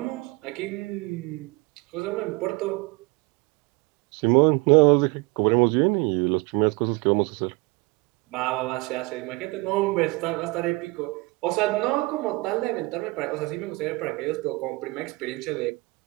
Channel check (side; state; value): left; quieter; 25.1 dB